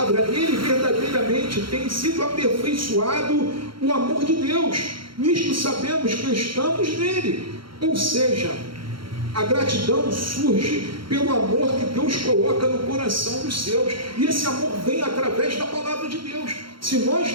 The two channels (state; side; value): late; left; 0.73 ms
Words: ele verdadeiramente tem sido aperfeiçoado o amor de Deus. Nisto sabemos que estamos nele. Ou seja, a gratidão surge pelo amor que Deus coloca no coração dos seus. E esse amor vem através da palavra de Deus. Se